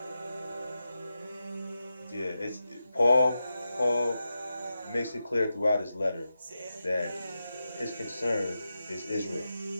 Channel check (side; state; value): both; inverted; correlation -0.89